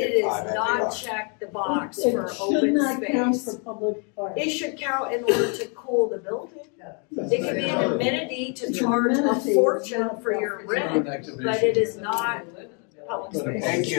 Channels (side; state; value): right; quieter; 37.3 dB